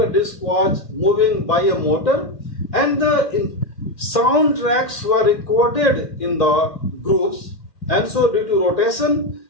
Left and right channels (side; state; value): right; late; 2.3 ms